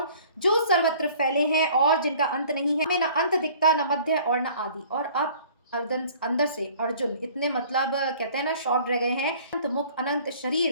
जो सर्वत्र फैले हैं और जिनका अंत नहीं है। हमें न अंत दिखता, न मध्य और न आदि। और अब अंदर से अर्जुन इतने मतलब कहते हैं ना शॉक्ड रह गए हैं। अनंत मुख अनंत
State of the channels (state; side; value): inverted; both; correlation -0.52